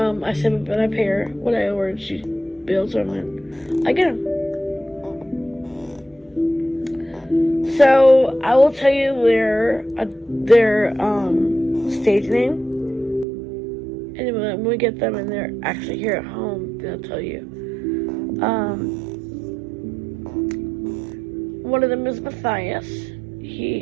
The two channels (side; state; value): left; drops out; at 13.2 s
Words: save it, but I pay her what I owe her, and she bills them, and I get them. So I will tell you their stage name, and then when we get them and they're actually here at home, then I'll tell you. One of them is Matthias.